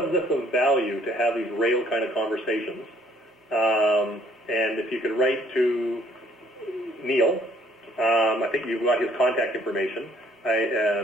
this of value to have these rail kind of conversations? And if you could write to Neil, I think you've got his contact information.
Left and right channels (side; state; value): both; normal; correlation 0.61